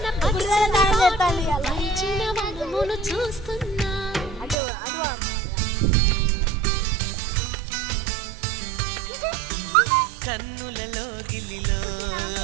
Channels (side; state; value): left; drops out; at 4.5 s